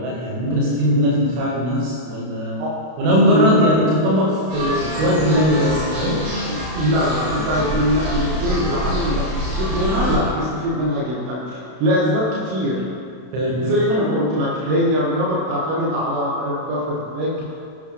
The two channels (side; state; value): left; late; 32 ms